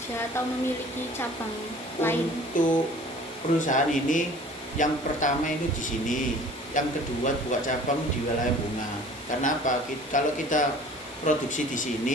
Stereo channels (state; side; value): normal; both; correlation 0.47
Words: atau memiliki cabang lain? Untuk perusahaan ini yang pertama itu di sini, yang kedua buka cabang di wilayah Bunga. Karena apa? Kalau kita produksi di